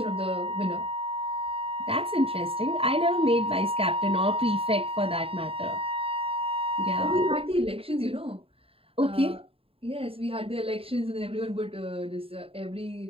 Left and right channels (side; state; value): left; late; 0.27 ms